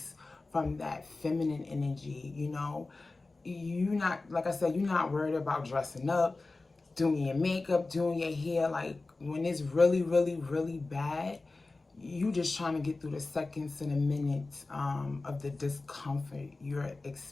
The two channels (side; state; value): right; quieter; 3.4 dB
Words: from that feminine energy. You're not, like I said, you're not worried about dressing up, doing your makeup, doing your hair. Like when it's really, really, really bad, you just trying to get through the seconds and the minutes of the discomfort you're